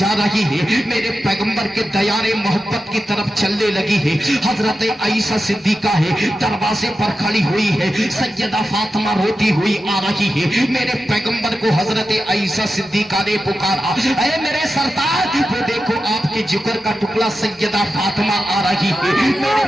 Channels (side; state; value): both; normal; correlation 0.91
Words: रही है? मेरे पैगंबर के दयारे मोहब्बत की तरफ चलने लगी है। हजरत आयशा सिद्दीका है, दरवाजे पर खड़ी हुई है। सैयदा फातिमा रोती हुई आ रही है। मेरे पैगंबर को हजरत आयशा सिद्दीका ने पुकारा, अरे मेरे सरदार, वो देखो आपके जिगर का टुकड़ा सैयदा फातिमा आ रही है। मेरे